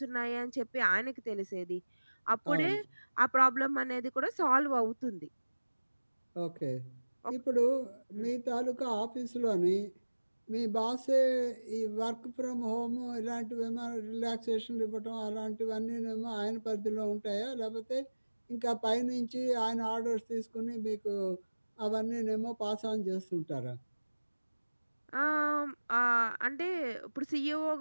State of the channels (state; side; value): inverted; both; correlation -1.00